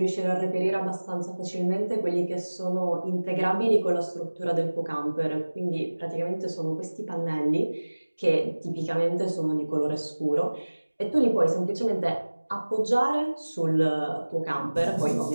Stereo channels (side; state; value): both; inverted; correlation -1.00